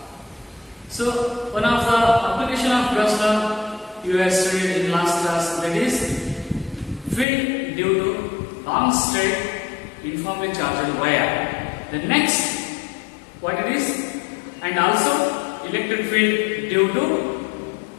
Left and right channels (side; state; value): right; drops out; at 7.2 s